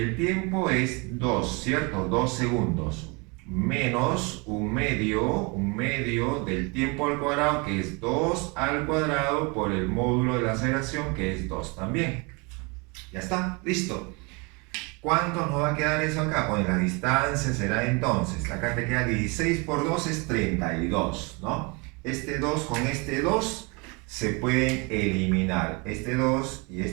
tiempo es 2, ¿cierto? 2 segundos, menos un medio del tiempo al cuadrado, que es 2 al cuadrado por el módulo de la aceleración, que es 2 también. Ya está, listo. ¿Cuánto nos va a quedar eso acá? Pues la distancia será entonces, acá te queda 16 por 2 es 32, ¿no? Este 2 con este 2 se pueden eliminar. Este 2 y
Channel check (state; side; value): quieter; left; 29.8 dB